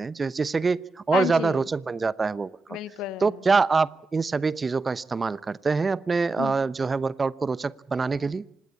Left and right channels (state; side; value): quieter; left; 3.6 dB